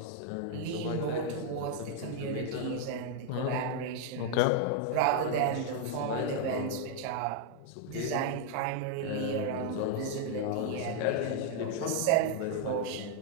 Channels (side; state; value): both; different; correlation 0.00